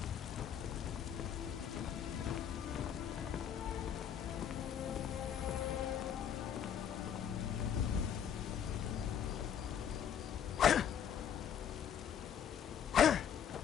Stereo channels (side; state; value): right; quieter; 8.9 dB